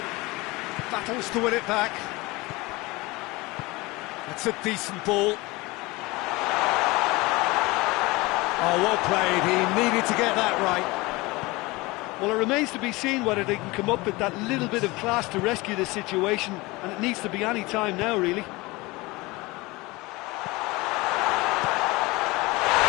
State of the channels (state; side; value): quieter; right; 22.6 dB